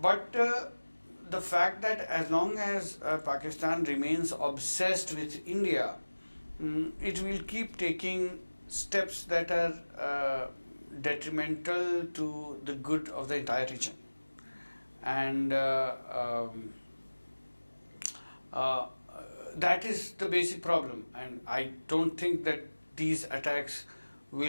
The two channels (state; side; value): inverted; both; correlation -1.00